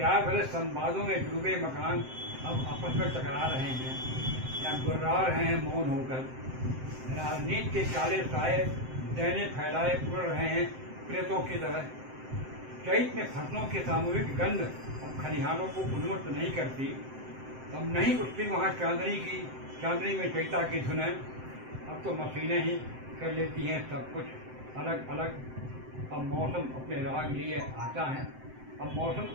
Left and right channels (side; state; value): left; late; 7.7 ms